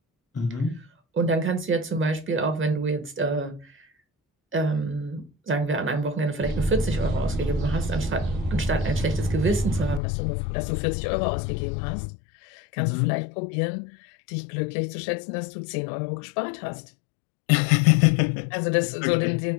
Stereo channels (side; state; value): right; drops out; at 10.0 s